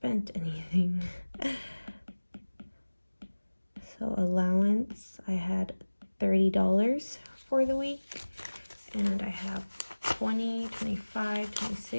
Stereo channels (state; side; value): inverted; both; correlation -1.00